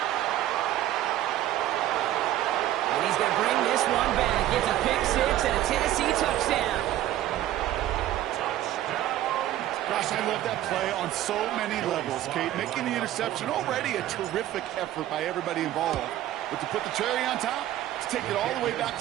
And he's going to bring this one back. Gets a pick 6 and a Tennessee touchdown. Gosh, I love that play on so many levels, Kate. Making the interception, already a terrific effort by everybody involved. But to put the cherry on top, to take it all the way back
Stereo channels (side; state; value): left; quieter; 13.4 dB